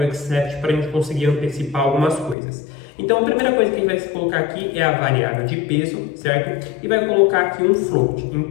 except para a gente conseguir antecipar algumas coisas. Então a primeira coisa que a gente vai colocar aqui é a variável de peso, certo? E vai colocar aqui um float,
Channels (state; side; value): drops out; right; at 2.4 s